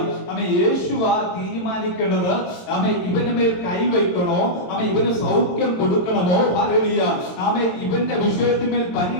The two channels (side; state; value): right; late; 22 ms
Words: യേശുവാ തീരുമാനിക്കേണ്ടത് ഇവന്റെ മേൽ കൈ വയ്ക്കണോ, ഇവന് സൗഖ്യം കൊടുക്കണമോ, ഹല്ലേലൂയ ഇവന്റെ വിഷയത്തിന്മേൽ